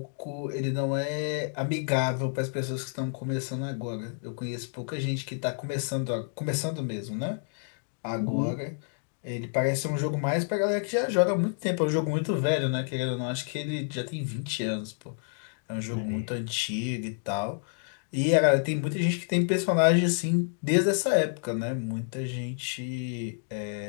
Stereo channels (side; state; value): right; silent; digital silence